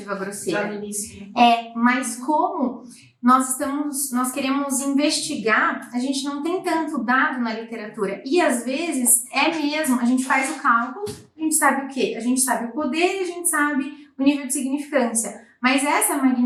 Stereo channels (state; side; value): identical; both; correlation 1.00